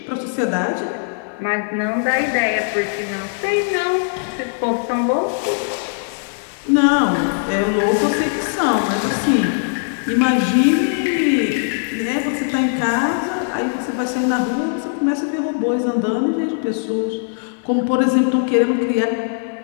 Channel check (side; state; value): right; silent; 61 dB below the other